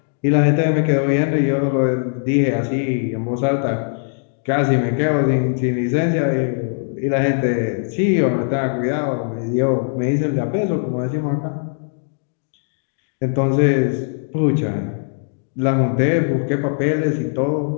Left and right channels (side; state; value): right; silent; digital silence